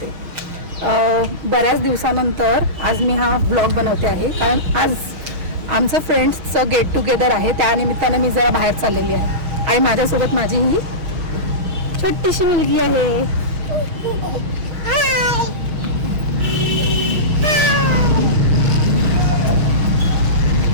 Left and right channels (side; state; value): left; late; 6.3 ms